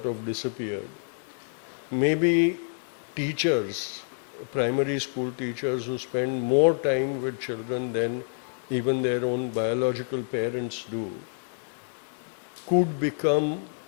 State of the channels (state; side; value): silent; right; 59 dB below the other